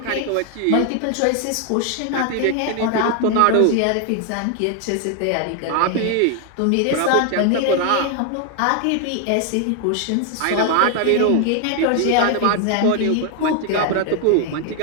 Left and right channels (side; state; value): both; different; correlation 0.00